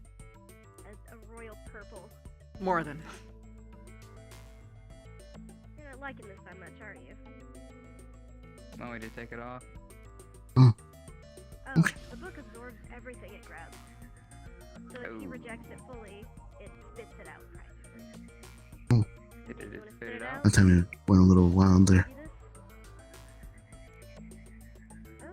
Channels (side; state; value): both; identical; correlation 1.00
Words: a royal purple. More than. You're not liking this that much, are you? Want me to take it off? Oh, Okay. the book absorbs everything it grabs. So if he Oh. rejects it fully, it spits it out practically. Did You it wanna spit it out? That time it went a little wild there. See this?